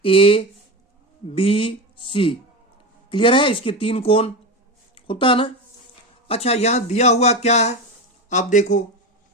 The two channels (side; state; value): both; normal; correlation 0.20